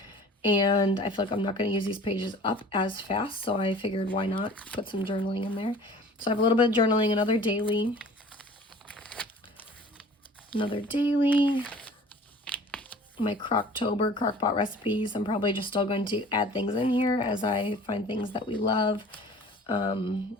And I feel like I'm not going to use these pages up as fast, so I figured why not put some journaling in there. So I have a little bit of journaling, another daily. My Croctober, Crockpot recipes. I'm probably just still going to add things in here as I find things that we love.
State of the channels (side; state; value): both; normal; correlation 0.46